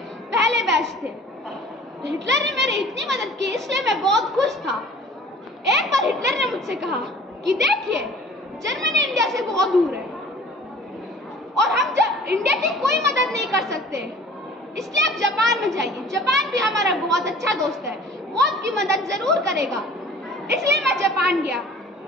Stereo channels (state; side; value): normal; both; correlation 0.48